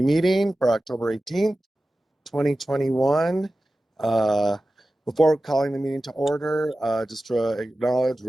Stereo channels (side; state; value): both; normal; correlation 0.95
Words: meeting for October 18th, 2021. Before calling the meeting to order, just to acknowledge